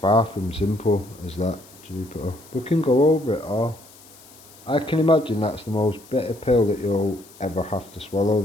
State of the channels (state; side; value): noise; left; hiss, 23 dB below the sound